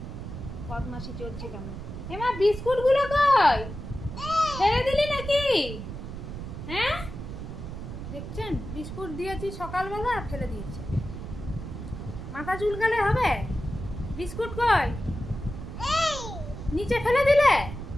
বদমাশি চলছে কেমন। হেমা বিস্কুট গুলো কই? ফেলে দিলি নাকি? হ্যাঁ দেখছেন বিস্কুট দিয়েছি সকালবেলা ফেলে দিয়েছে। মাথা চুলকালে হবে? বিস্কুট কই? নিচে ফেলে দিলে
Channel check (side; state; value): right; noise; rumble, 9 dB below the sound